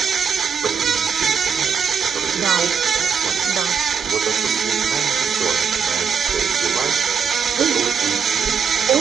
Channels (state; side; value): quieter; left; 6.7 dB